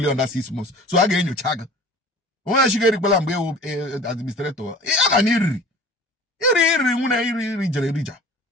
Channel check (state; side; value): normal; both; correlation 0.43